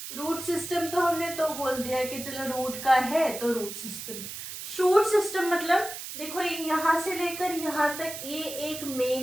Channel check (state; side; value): noise; right; hiss, 9 dB below the sound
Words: Root system तो हमने तो बोल दिया कि चलो रूट का है तो रूट सिस्टम। शूट सिस्टम मतलब देखो, यहाँ से लेकर यहाँ तक ये एक